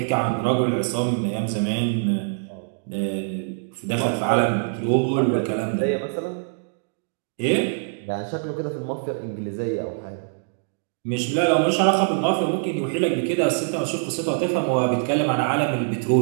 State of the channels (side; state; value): left; silent; digital silence